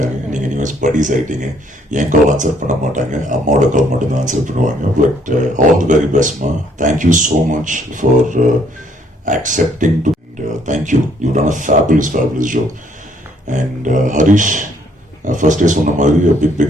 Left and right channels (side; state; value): both; normal; correlation 0.66